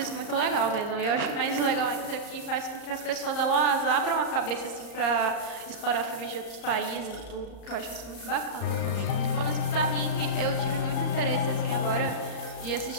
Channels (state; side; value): late; right; 34 ms